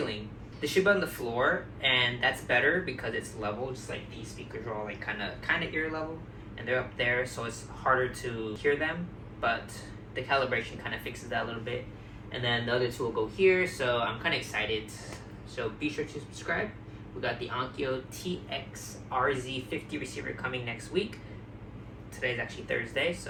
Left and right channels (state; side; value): identical; both; correlation 1.00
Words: They should be on the floor, and that's better because it's level, just like these speakers are all like kind of ear level, and they're up there, so it's harder to hear them. But the calibration kind of fixes that a little bit. And then the other 2 will go here, so I'm kind of excited. So be sure to subscribe. We got the Onkyo TX-RZ50 receiver coming next week. Today's actually Thursday,